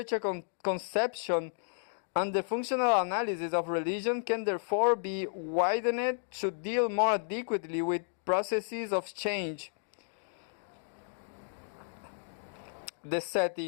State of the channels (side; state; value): right; silent; digital silence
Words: a conception, and the functional analysis of religion can therefore be widened to deal more adequately with processes of change. The